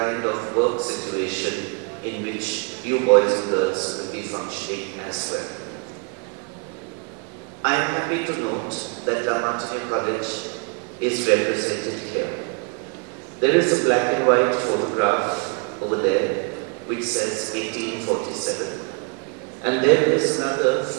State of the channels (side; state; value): left; quieter; 36.7 dB